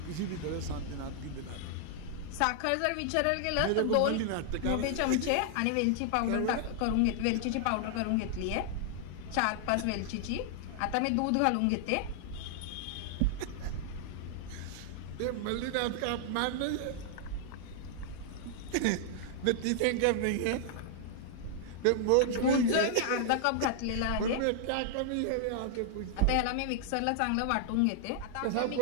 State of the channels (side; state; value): both; different; correlation -0.01